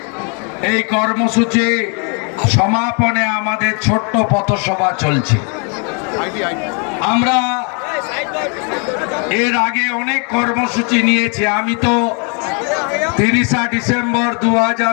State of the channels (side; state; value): right; quieter; 36.8 dB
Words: এই কর্মসূচি সমাপনে আমাদের ছোট্ট পথসভা চলছে। আমরা এর আগে অনেক কর্মসূচি নিয়েছি। আমি তো 30 ডিসেম্বর